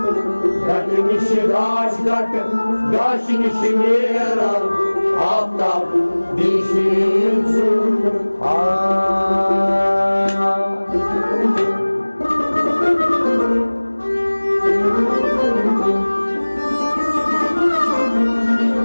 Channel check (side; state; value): both; inverted; correlation -1.00